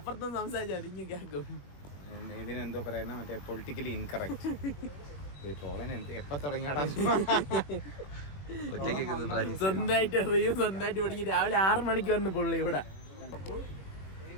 സംസാരിച്ചാൽ അതിങ്ങ് കേൾക്കും. ഇതിനെന്തോ പറയുന്ന മറ്റേ പൊളിറ്റിക്കലി ഇൻകറക്റ്റ്. എപ്പ തുടങ്ങിയാടാ സ്വന്തമായിട്ട് പഠിക്കും. രാവിലെ 6 മണിക്ക് വന്ന് പുള്ളി ഇവിടെ.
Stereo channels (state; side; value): late; right; 21 ms